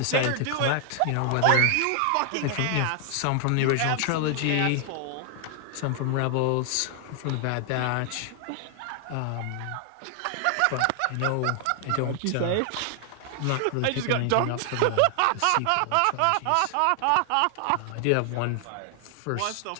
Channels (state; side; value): different; both; correlation 0.00